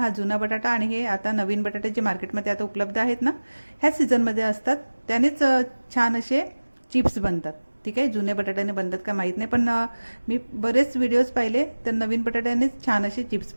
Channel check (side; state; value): both; inverted; correlation -1.00